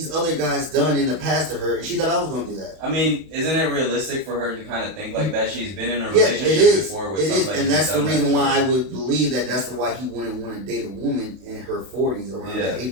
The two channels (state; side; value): late; left; 32 ms